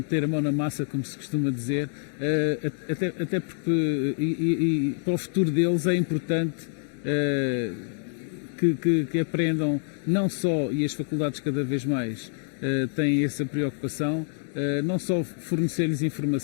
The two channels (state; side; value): silent; right; digital silence